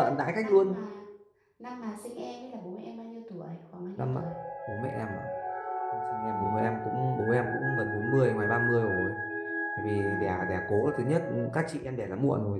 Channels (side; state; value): both; identical; correlation 1.00